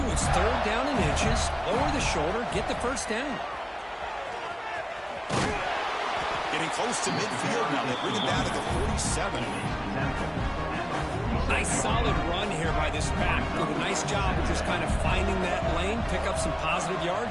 it's 3rd down and inches, lower the shoulder, get the first down. Getting close to midfield now. They bring it down to the 47. Nice solid run here by this back. Did a nice job of just kind of finding that lane, pick up some positive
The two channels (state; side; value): identical; both; correlation 1.00